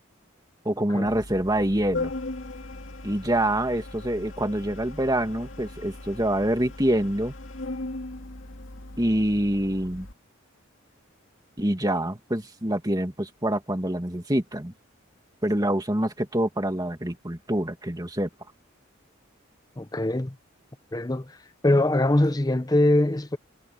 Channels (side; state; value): both; normal; correlation 0.80